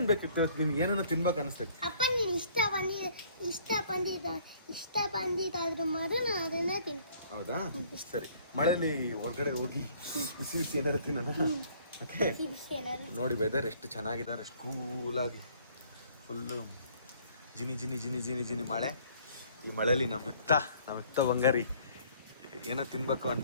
ಬೇಕಿತ್ತು ನಿನ್ಗೆ? ಏನೇನೋ ತಿನ್ಬೇಕು ಅನಿಸ್ತೈತಿ. ಅಪ್ಪ ನೀನು ಇಷ್ಟ ಬಂದಿದ್ದಾದ್ರೂ ಮಾತ್ರ ನಾನು ಅದನ್ನೇ ತಿಂತೀನಿ. ಹೌದಾ, ಸರಿ. ಮಳೆಯಲ್ಲಿ ಹೊರಗಡೆ ಹೋಗಿ ಬಿಸಿ ಏನಾರು ತಿನ್ನೋಣ. ಓಕೆ, ನೋಡಿ ವೆದರ್ ಎಷ್ಟು ಚೆನ್ನಾಗಿದೆ, ಎಷ್ಟು ಕೂಲಾಗಿ ಫುಲ್ಲು ಜಿನಿ ಮಳೆ. ಈ ಮಳೆಯಲ್ಲಿ ನಮ್ಮ ಬಂಗಾರಿ ಏನೋ ತಿನ್ಬೇಕು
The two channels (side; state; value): both; inverted; correlation -0.58